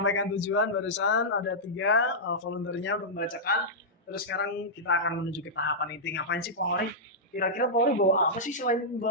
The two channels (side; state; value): both; normal; correlation -0.10